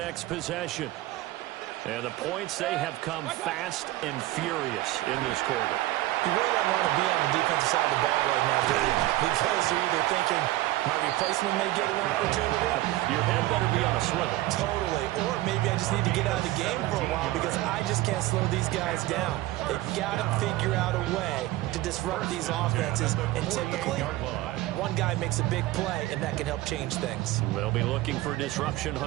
possession. And the points, they have come fast and furious in this quarter. You really don't want to be on the defensive side of the ball right now, do you? Because you're either thinking, my replacement may get an opportunity. Your head better be on a swivel. Totally. Or maybe I just need to get out of the game for a while because I just can't slow these guys down. They've got to figure out a way to disrupt these offenses. And typically, one guy makes a big play, and that can help change things. They'll be looking for disruption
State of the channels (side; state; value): left; quieter; 16.8 dB